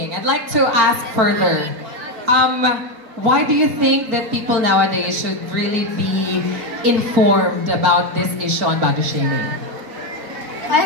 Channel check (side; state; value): left; late; 4.4 ms